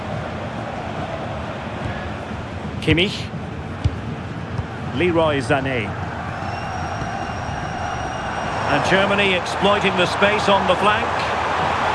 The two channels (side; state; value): both; identical; correlation 1.00